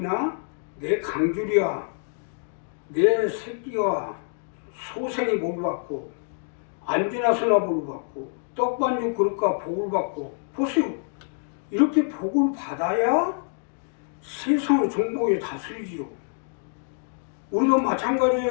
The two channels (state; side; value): silent; right; 61 dB below the other